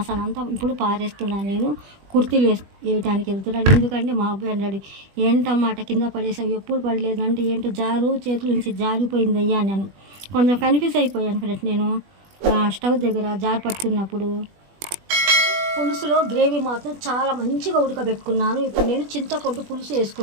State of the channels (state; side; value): late; left; 20 ms